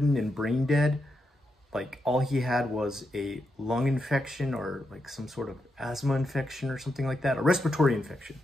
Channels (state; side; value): normal; both; correlation 0.84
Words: and brain dead. Like all he had was a lung infection or like some sort of asthma infection or something like that, a respiratory infection.